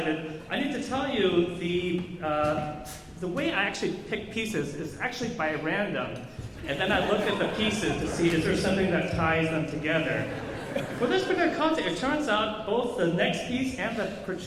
I need to tell you the way I actually pick pieces is actually by random. And then I look at the pieces to see is there something that ties them together. For this particular concept, it turns out both the next piece and the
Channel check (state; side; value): identical; both; correlation 1.00